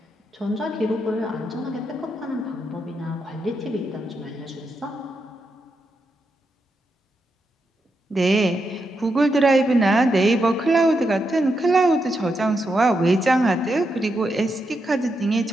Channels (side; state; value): both; normal; correlation 0.84